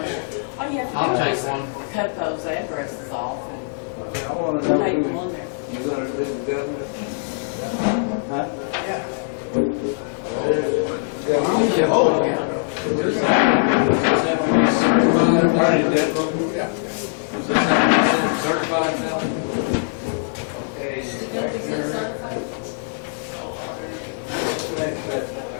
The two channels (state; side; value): silent; right; digital silence